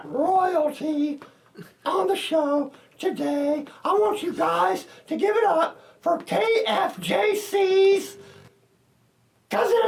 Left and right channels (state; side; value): identical; both; correlation 1.00